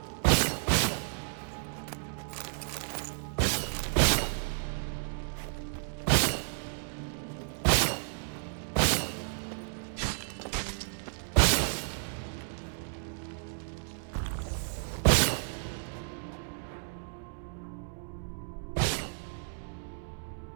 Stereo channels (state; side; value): silent; left; digital silence